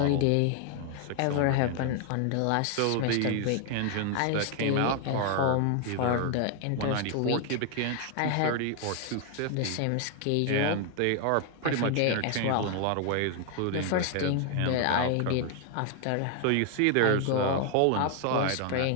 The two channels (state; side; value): different; both; correlation 0.00